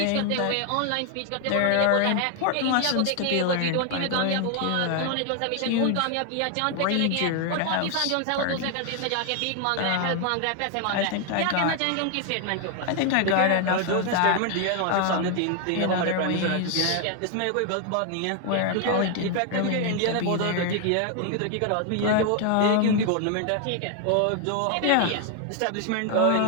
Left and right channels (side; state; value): both; different; correlation 0.00